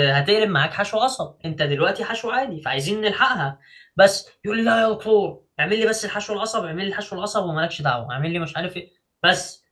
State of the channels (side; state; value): both; identical; correlation 1.00